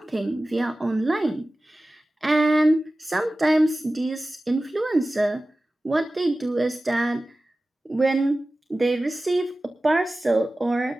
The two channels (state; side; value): normal; both; correlation 0.96